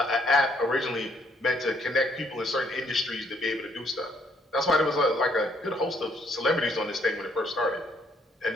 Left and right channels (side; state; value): both; normal; correlation 0.68